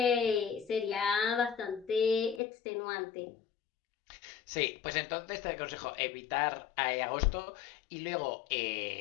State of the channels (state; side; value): drops out; right; at 2.4 s